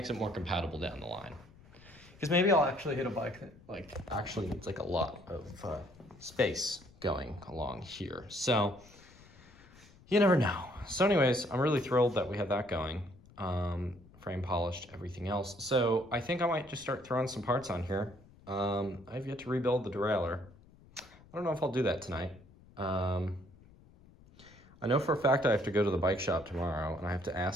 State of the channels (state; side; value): noise; left; rumble, 24 dB below the sound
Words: it more compatible down the line. Because maybe I'll actually hit a bike that actually needs a lot of space going along here. So, you never know. So anyways, I'm really thrilled that we have that going. Frame polished, everything else. So I think I might just start throwing some parts on here. I've yet to rebuild the derailleur. I don't know if I'll do that tonight. I know for a fact I have to go to the bike shop tomorrow, and I have to